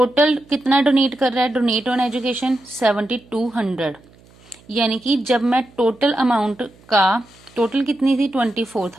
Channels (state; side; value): noise; right; hum, 27 dB below the sound